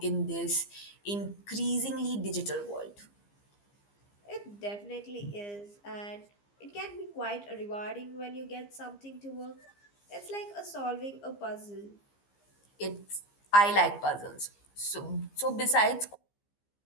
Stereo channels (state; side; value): late; right; 15 ms